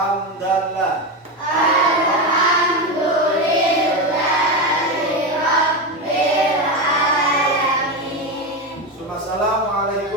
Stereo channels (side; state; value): both; normal; correlation 0.15